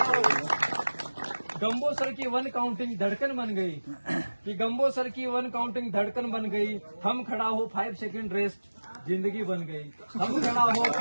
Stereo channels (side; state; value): both; inverted; correlation -1.00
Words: गंबोसर की 1 काउंटिंग धड़कन बन गई, कि गंबोसर की 1 काउंटिंग धड़कन बन गई। हम खड़ा हो 5 सेकंड रेस्ट, जिंदगी बन गई। हम खड़ा हो